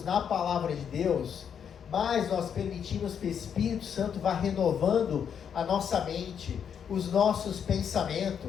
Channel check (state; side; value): quieter; right; 7.8 dB